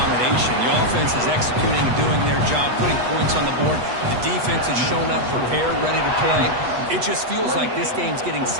The offense is executing and doing their job, putting points on the board. The defense has shown up, prepared, ready to play. It just feels like this game's getting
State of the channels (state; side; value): late; left; 8.2 ms